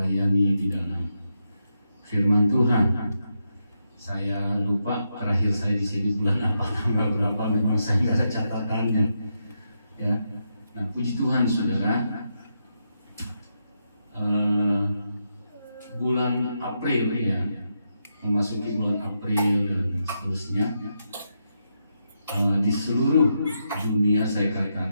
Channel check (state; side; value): inverted; both; correlation -0.83